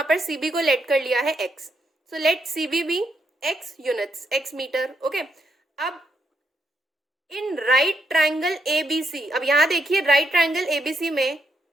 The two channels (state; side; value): normal; both; correlation 0.79